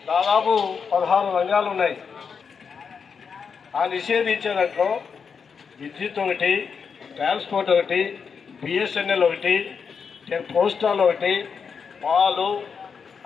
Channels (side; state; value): right; quieter; 6.1 dB